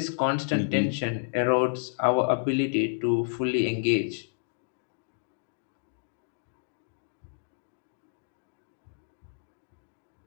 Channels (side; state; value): right; silent; digital silence